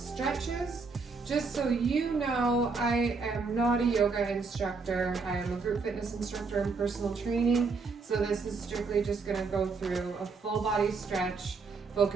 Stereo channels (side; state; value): left; quieter; 4.5 dB